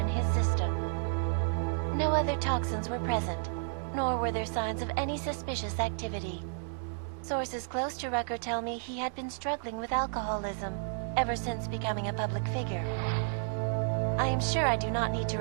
his system. No other toxins were present, nor were there signs of any suspicious activity. Sources close to Rucker tell me he had been struggling with alcoholism ever since becoming a public figure. I am sure I do not need to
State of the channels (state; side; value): silent; left; digital silence